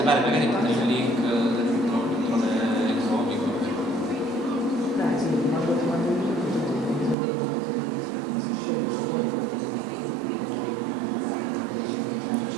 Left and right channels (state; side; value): drops out; left; at 7.2 s